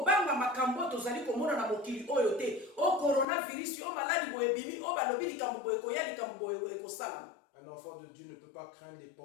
makambo tozali komona na mokili oyo te. O coronavirus, o maladi boye bimi, o balobi likambo boye koya likambo boye ekosalama. Un enfant de Dieu ne peut pas craindre les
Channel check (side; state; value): right; drops out; at 3.2 s